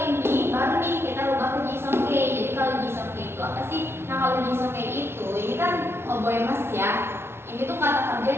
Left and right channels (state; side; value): late; left; 0.12 ms